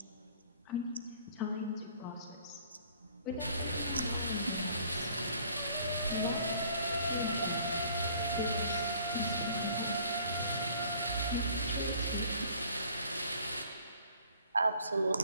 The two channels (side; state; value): both; inverted; correlation -0.56